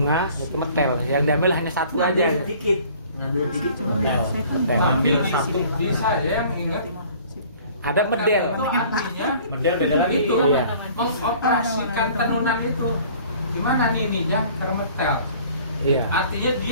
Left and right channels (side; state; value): both; inverted; correlation -0.51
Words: itu metel. Yang diambil hanya satu aja. Ngambil sedikit. Ngambil sedikit. Metel. Metel. Tapi Ambil satu. di saya yang ingat Ada medel. itu artinya Medel beda lagi. itu Iya. mengoperasikan tenunan itu. Gimana nininya termetel? Iya. Artinya